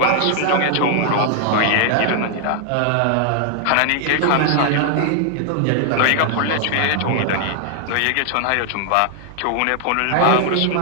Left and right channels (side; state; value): both; different; correlation 0.00